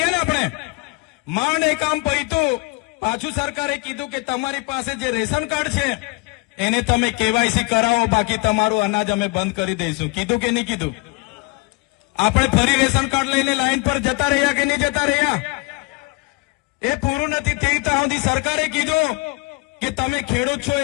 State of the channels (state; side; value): quieter; right; 26.3 dB